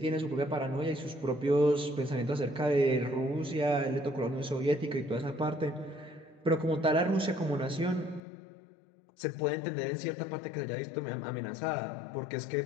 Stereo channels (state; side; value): drops out; right; at 8.2 s